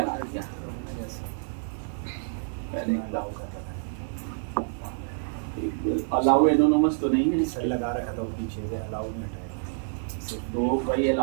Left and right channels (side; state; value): left; silent; digital silence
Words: दिया। अलाउ एनोनिमस तो नहीं है सर, लगा रखा था पीछे से, अलाउ नहीं हटाया। तो वही